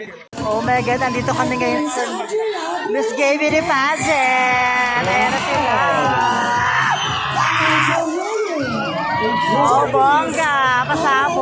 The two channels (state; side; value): identical; both; correlation 1.00